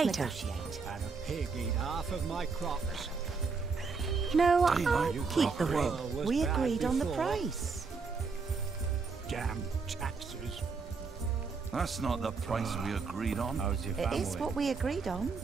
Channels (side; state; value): left; quieter; 4.8 dB